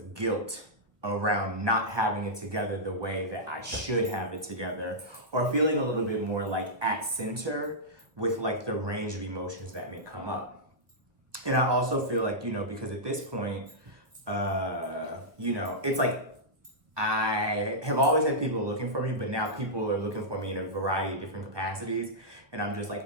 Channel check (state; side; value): late; left; 1.3 ms